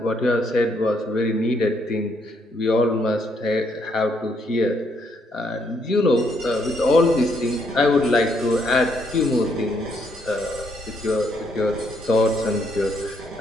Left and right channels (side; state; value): both; normal; correlation 0.72